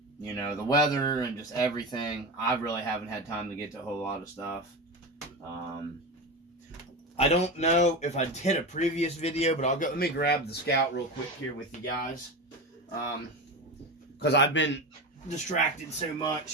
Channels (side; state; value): both; normal; correlation 0.22